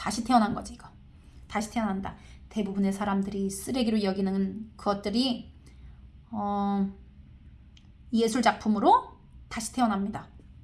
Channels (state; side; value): identical; both; correlation 1.00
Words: 태어난 거지 이거. 다시 태어난다. 대부분의 사람들이 쓰레기로 여기는 것들이 예술 작품으로 다시 태어납니다.